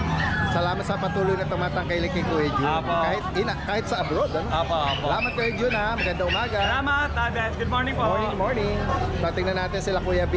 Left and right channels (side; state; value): both; identical; correlation 1.00